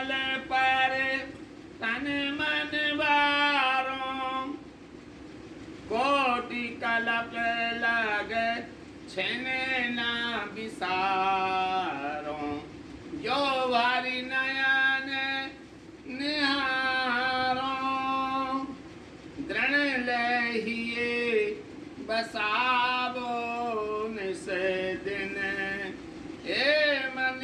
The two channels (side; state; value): both; identical; correlation 1.00